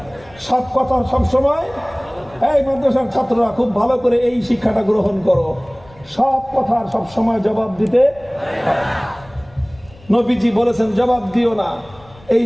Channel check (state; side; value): noise; left; rumble, 25 dB below the sound